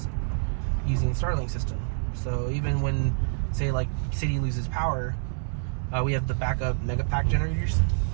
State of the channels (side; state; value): left; silent; digital silence